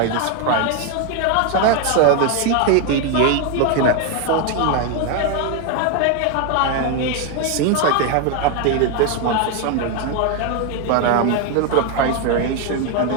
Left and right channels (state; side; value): different; both; correlation 0.01